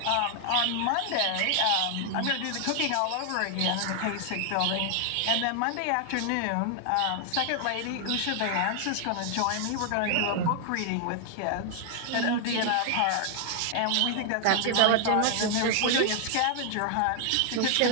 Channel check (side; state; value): both; different; correlation 0.00